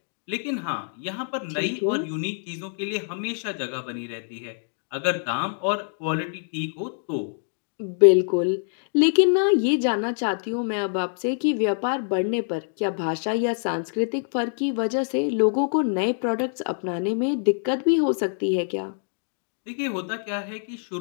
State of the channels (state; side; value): silent; right; digital silence